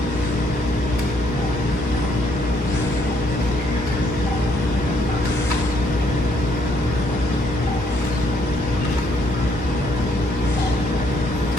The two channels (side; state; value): both; normal; correlation 0.70